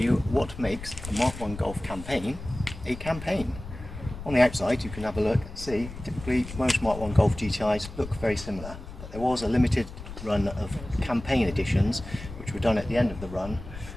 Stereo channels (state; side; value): noise; left; rumble, 12 dB below the sound